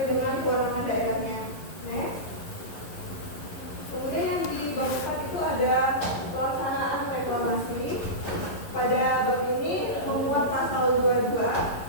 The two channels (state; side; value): late; right; 11 ms